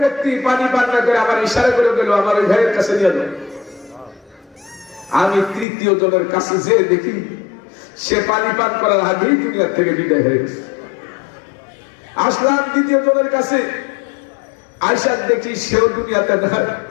ব্যক্তি পানি পান না করে আমার ইশারা করে গেল, আমার ওই ভাইয়ের কাছে নিয়ে যাও। আমি তৃতীয় জনের কাছে যে দেখি সে পানি পান করার আগেই দুনিয়ার থেকে বিদায় হয়ে গেছে। আসলাম দ্বিতীয় জনের কাছে, আয়সা দেখি সেও দুনিয়াতে নাই,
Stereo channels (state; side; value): drops out; right; at 5.7 s